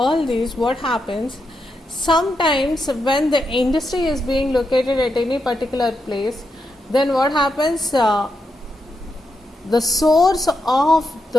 these, what happens? Sometimes when the industry is being located at any particular place, then what happens, the source of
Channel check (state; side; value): normal; both; correlation 0.84